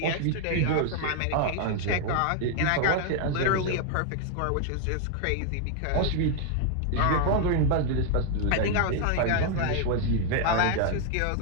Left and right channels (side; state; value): both; different; correlation 0.00